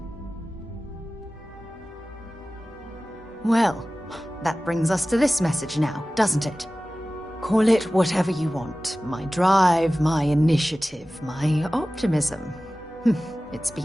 Well, that brings us to this message now, doesn't it? Call it whatever you want. My drive, my initiative, my optimism. It's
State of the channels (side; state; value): both; normal; correlation 0.96